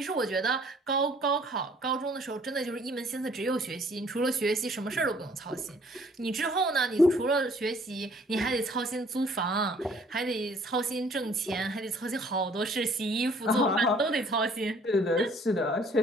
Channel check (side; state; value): both; normal; correlation 0.58